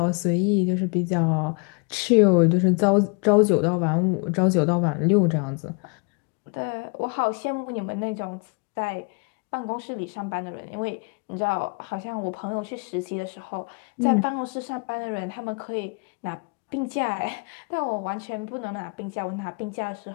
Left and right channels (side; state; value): right; quieter; 33.9 dB